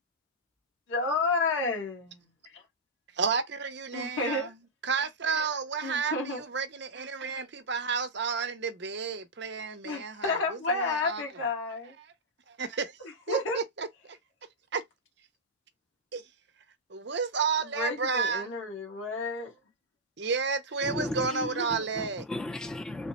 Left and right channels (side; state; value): both; normal; correlation -0.09